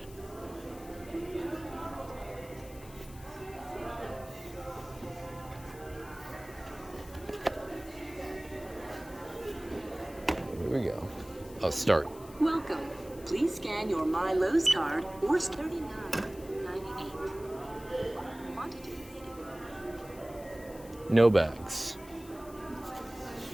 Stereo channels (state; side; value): noise; left; hiss, 20 dB below the sound